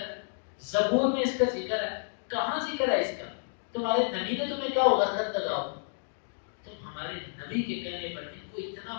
ہے، زبور میں اس کا ذکر ہے، کہاں ذکر ہے اس کا؟ تمہارے نبی نے تمہیں کہا ہوگا خط لگاؤ، تم ہمارے نبی کے کہنے پر ان کو اتنا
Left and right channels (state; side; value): silent; right; digital silence